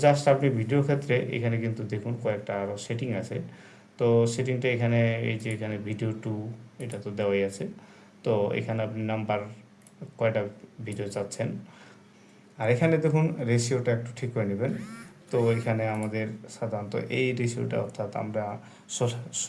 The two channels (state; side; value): identical; both; correlation 1.00